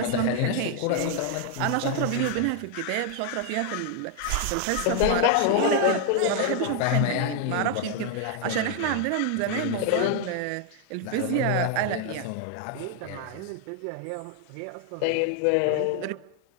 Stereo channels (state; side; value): different; both; correlation 0.00